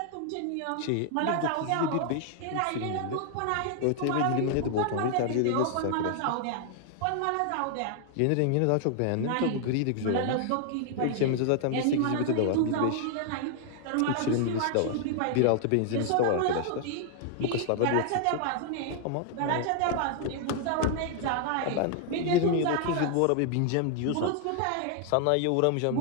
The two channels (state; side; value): different; both; correlation 0.00